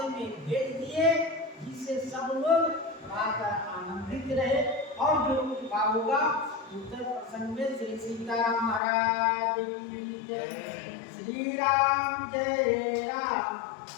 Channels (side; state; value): right; drops out; at 8.8 s